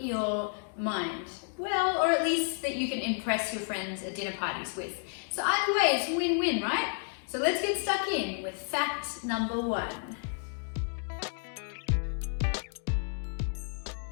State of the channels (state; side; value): silent; right; 57 dB below the other